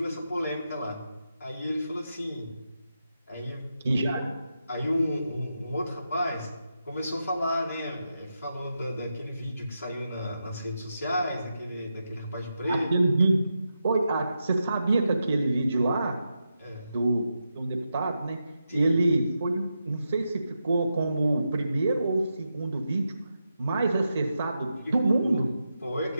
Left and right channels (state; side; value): inverted; both; correlation -0.87